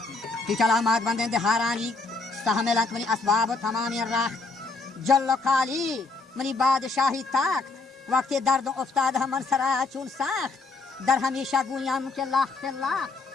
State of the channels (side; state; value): right; quieter; 3.8 dB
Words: کی چلامات بندیں دہارانی استحملت منی اسباب تمامی راخ جل و کالی منی بادشاہی تاکت وقت درد افتاد من سرا چون ساخت در ہمیشہ گویاں کے لاخت لاخت